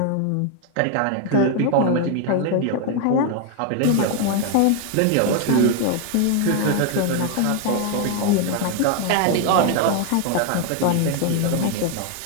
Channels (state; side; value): different; both; correlation 0.01